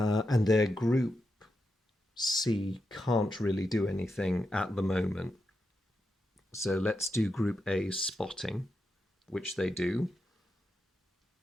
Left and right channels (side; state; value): both; normal; correlation 0.86